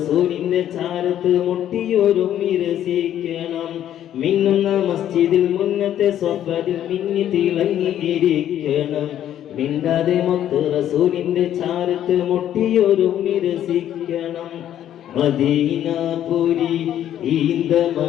ചാരത്ത് മുട്ടിയൊരുമ്മി രസിക്കണം മിന്നുന്ന മസ്ജിദിൽ മുന്നത്തെ സ്വഫദിൽ മിന്നി തിളങ്ങിയിരിക്കണം മിണ്ടാതെ മൊത്ത് റസൂലിന്റെ ചാരത്ത് മുട്ടിയൊരുമ്മി രസിക്കണം മദീനാപുരി ഈന്ത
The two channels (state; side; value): quieter; right; 11.1 dB